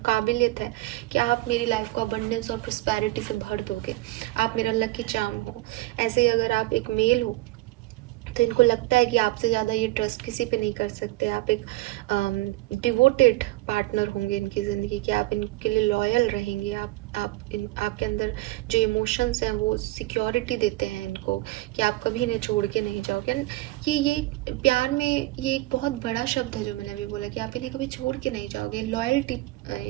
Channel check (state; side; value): quieter; left; 19.1 dB